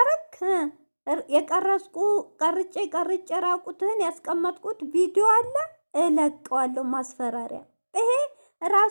የቀረጽኩ ቀርጬ ራቁትህን ያስቀመጥኩት ቪዲዮ አለ እለቀዋለሁ። ማስፈራሪያ። ይሄ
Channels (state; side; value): inverted; both; correlation -1.00